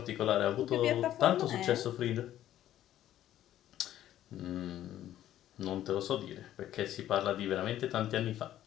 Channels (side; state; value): right; quieter; 12.4 dB